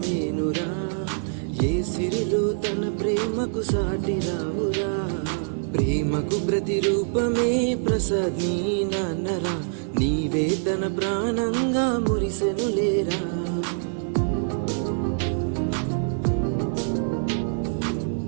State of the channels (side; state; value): left; silent; digital silence